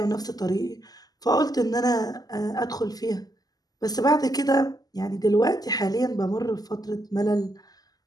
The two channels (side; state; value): right; late; 0.18 ms